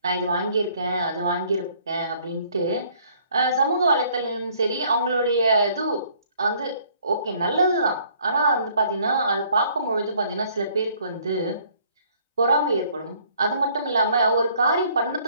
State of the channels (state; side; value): inverted; both; correlation -0.61